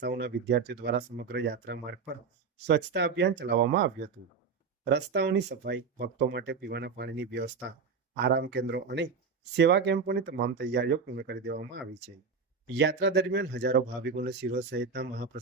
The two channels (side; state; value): left; quieter; 5.3 dB